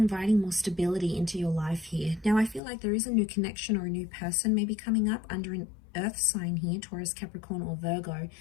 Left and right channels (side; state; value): right; drops out; at 2.6 s